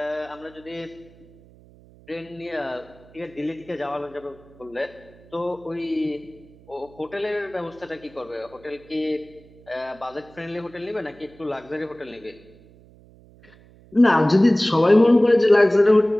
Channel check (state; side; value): noise; right; hum, 25 dB below the sound